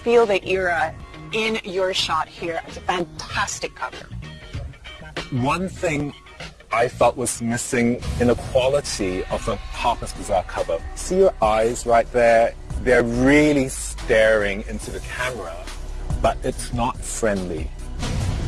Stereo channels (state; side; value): identical; both; correlation 1.00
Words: feel the era in your shot here. It's a fantastic cover. One thing I felt was missing in the quality of the Harper's Bazaar cover. See your eyes right there? They're really staring into the camera, but it's not friendly.